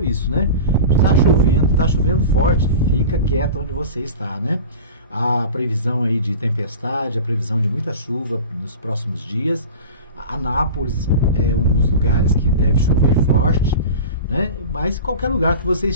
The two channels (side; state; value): both; inverted; correlation -0.34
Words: isso, né? Está chovendo forte, fica quieto onde você está, né? A previsão aí de tempestade, a previsão de muita chuva nos próximos dias. Anápolis é um dos lugares que deve chover forte, né? Mas qualquer lugar que você